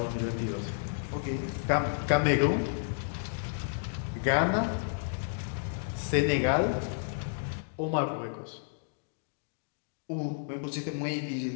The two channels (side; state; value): right; silent; digital silence